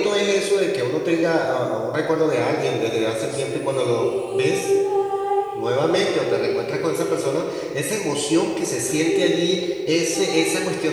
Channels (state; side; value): identical; both; correlation 1.00